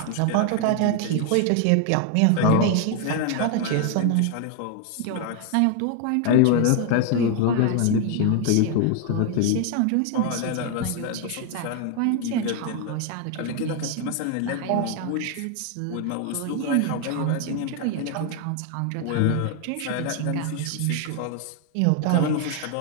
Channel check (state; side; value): different; both; correlation 0.00